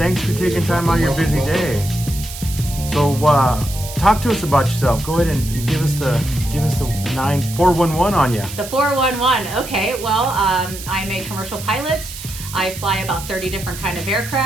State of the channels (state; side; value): noise; right; hiss, 11 dB below the sound